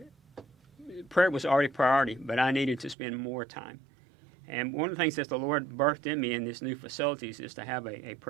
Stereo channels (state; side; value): drops out; left; at 3.0 s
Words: Prayer was already a priority, but I needed to spend more time. And one of the things that the Lord birthed in me in this new facilities is to have a